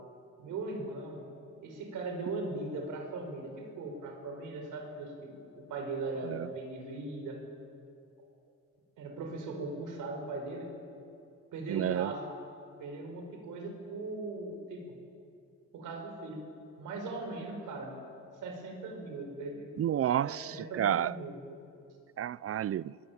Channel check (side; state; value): left; quieter; 5.8 dB